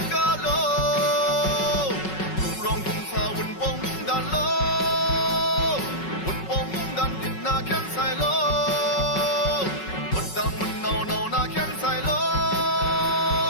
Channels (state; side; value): late; right; 5.4 ms